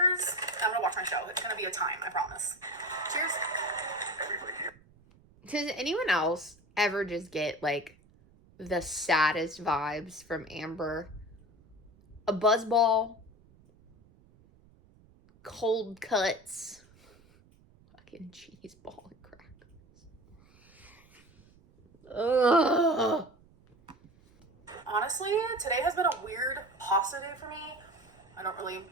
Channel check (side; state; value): right; noise; rumble, 28 dB below the sound